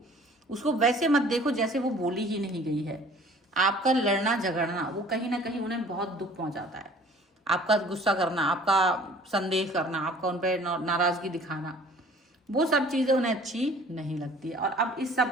उसको वैसे मत देखो जैसे वो बोली ही नहीं गई है। आपका लड़ना झगड़ना वो कहीं ना कहीं उन्हें बहुत दुख पहुंचाता है। आपका गुस्सा करना, आपका संदेह करना, आपका उन पर नाराज़गी दिखाना, वो सब चीज़ें उन्हें अच्छी नहीं लगती है। और अब इस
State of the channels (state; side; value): normal; both; correlation 0.51